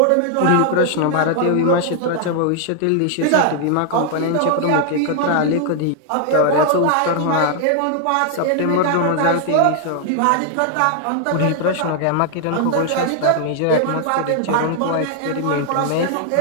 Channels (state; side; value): different; both; correlation 0.00